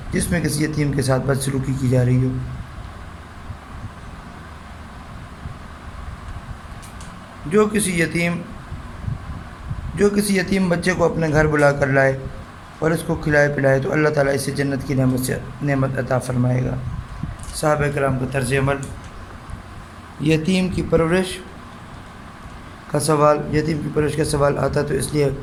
جس میں کسی یتیم کے ساتھ بدسلوکی کی جا رہی ہو۔ جو کسی یتیم بچے کو اپنے گھر بلا کر لائے اور اس کو کھلائے پلائے تو اللہ تعالیٰ اسے جنت کی نعمت عطا فرمائے گا۔ صحابہ کرام کا طرز عمل۔ یتیم کی پرورش کا سوال آتا تو اس لیے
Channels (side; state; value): both; identical; correlation 1.00